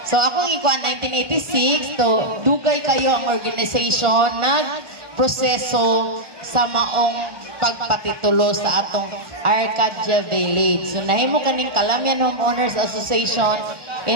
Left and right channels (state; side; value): late; left; 1.4 ms